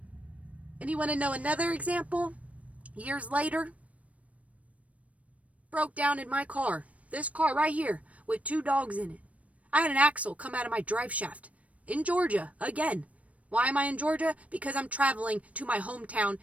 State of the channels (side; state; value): left; late; 0.066 ms